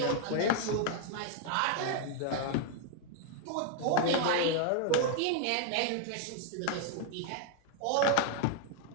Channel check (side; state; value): both; different; correlation 0.00